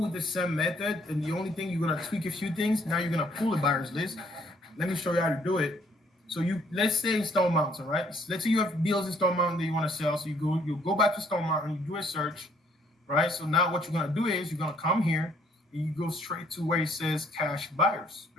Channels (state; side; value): normal; both; correlation 0.64